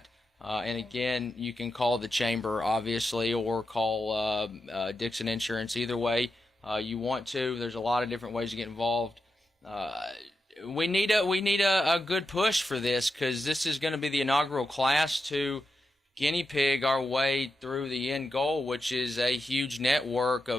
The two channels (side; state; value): both; normal; correlation 0.88